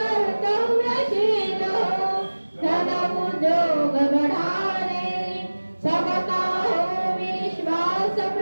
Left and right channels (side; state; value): both; inverted; correlation -1.00